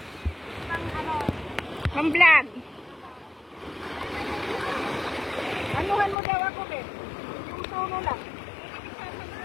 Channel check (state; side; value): drops out; right; at 6.2 s